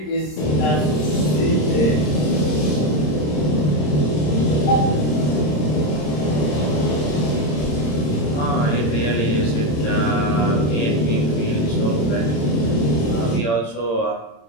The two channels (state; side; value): late; right; 26 ms